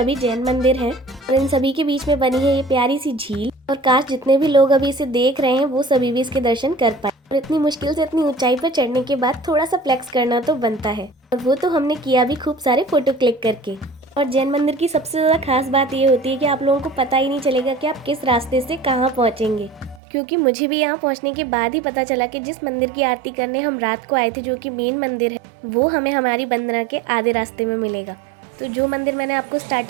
जैन मंदिर हैं और इन सभी के बीच में बनी है ये प्यारी सी झील। और काश जितने भी लोग अभी इसे देख रहे हैं वो सभी भी इसके दर्शन कर पाए। और इतनी मुश्किल से इतनी ऊंचाई पर चढ़ने के बाद थोड़ा सा फ्लेक्स करना तो बनता है और वो तो हमने किया भी खूब सारे फोटो क्लिक करके। और जैन मंदिर की सबसे ज़्यादा खास बात ये होती है कि आप लोगों को पता ही नहीं चलेगा कि आप किस रास्ते से कहाँ पहुँचेंगे, क्योंकि मुझे भी यहाँ पहुँचने के बाद ही पता चला कि जिस मंदिर की आरती करने हम रात को आए थे, जो कि मेन मंदिर है, वो हमें हमारी वंदना के आधे रास्ते में मिलेगा। तो जो मंदिर मैंने आपको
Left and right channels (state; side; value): drops out; left; at 20.0 s